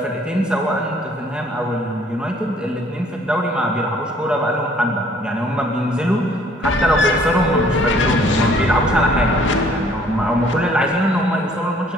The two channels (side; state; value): both; normal; correlation 0.59